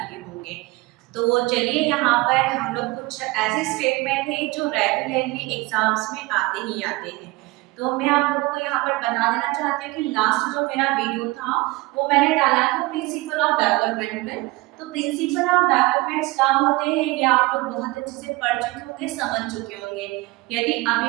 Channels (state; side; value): quieter; left; 22.2 dB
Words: दिए होंगे। तो चलिए यहाँ पर हम लोग कुछ ऐसे स्टेटमेंट हैं जो रेगुलरली एग्जाम्स में आते ही आते हैं। तो मैं आप लोगों को यहाँ पर बता देना चाहती हूँ कि लास्ट जो मेरा वीडियो था वो मैंने डाला था प्रिंसिपल ऑफ डेवलपमेंट में। तो प्रिंसिपल ऑफ डेवलपमेंट क्या होते हैं ये आप लोग बहुत अच्छे से पढ़ चुके होंगे, समझ चुके होंगे। यदि अभी